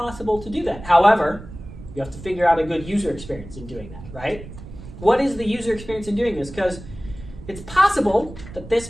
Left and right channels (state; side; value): noise; right; rumble, 15 dB below the sound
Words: to do that. However, you have to figure out a good user experience in doing that, right? What is the user experience in doing this? Because it's possible that this